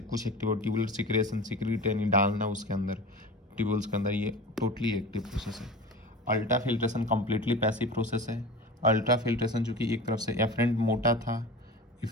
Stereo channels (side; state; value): both; normal; correlation 0.32